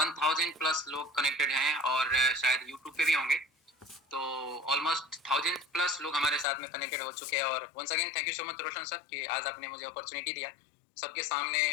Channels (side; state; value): right; drops out; at 6.5 s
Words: प्लस लोग कनेक्टेड हैं और शायद यूट्यूब पे भी होंगे, तो ऑलमोस्ट 1000 प्लस लोग हमारे साथ में कनेक्टेड हो चुके हैं। और once again thank you so much Roshan sir कि आज आपने मुझे अपॉर्चुनिटी दिया सबके सामने